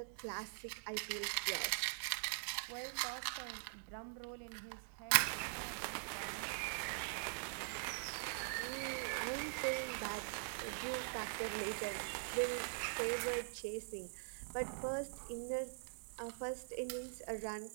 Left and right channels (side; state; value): left; silent; digital silence